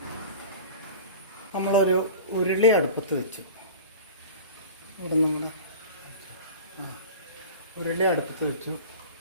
നമ്മളൊരു ഉരുളി അടുപ്പത്ത് വെച്ചു. ഇവിടെ നമ്മൾ ഉരുളി അടുപ്പത്ത് വെച്ചു.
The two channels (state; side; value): inverted; both; correlation -0.37